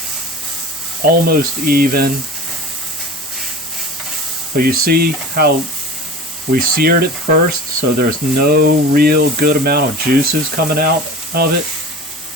almost even. But you see how we seared it first, so there's no real good amount of juices coming out of it.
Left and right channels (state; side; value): normal; both; correlation 0.36